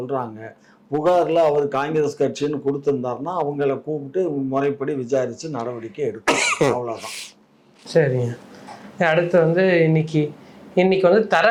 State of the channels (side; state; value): both; identical; correlation 1.00